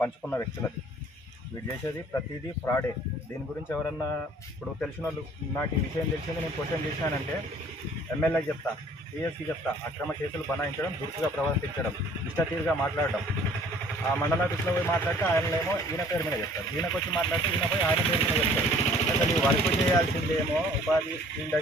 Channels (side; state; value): both; normal; correlation 0.54